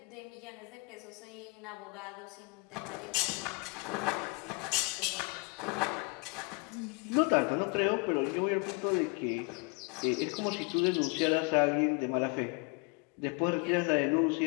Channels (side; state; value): right; quieter; 32.0 dB